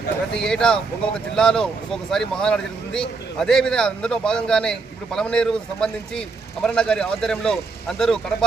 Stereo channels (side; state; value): left; quieter; 4.3 dB